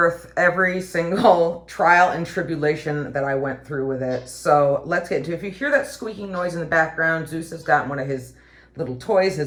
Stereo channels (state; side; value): identical; both; correlation 1.00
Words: every single trial and tribulation that I went through with it. So let's get into it. If you hear that squeaking noise in the background, Zeus has gotten one of his little toys,